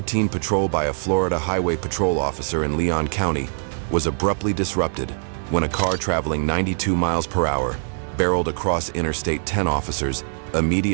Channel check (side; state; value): left; silent; 64 dB below the other